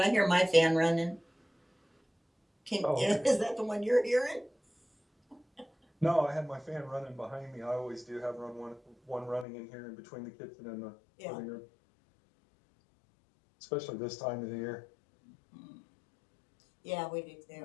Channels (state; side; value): drops out; right; at 9.5 s